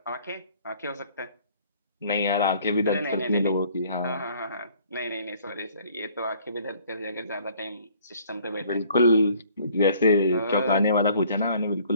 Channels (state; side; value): inverted; both; correlation -0.58